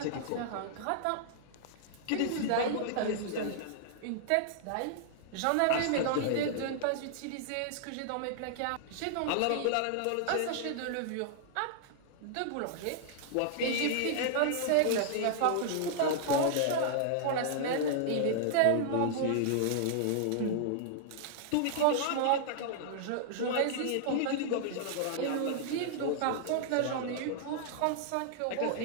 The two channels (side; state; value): both; different; correlation -0.01